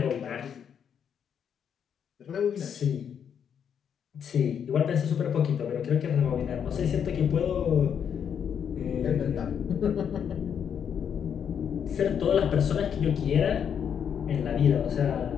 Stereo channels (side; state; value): right; quieter; 8.0 dB